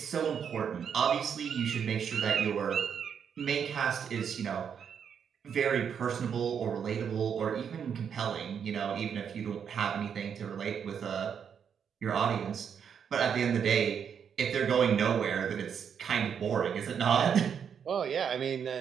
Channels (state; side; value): quieter; left; 7.5 dB